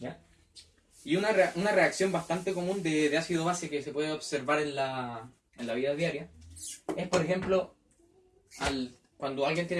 Y una reacción bastante común de ácido-base que se puede observar en la vida diaria es, por ejemplo, cuando alguien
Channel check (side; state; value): both; identical; correlation 1.00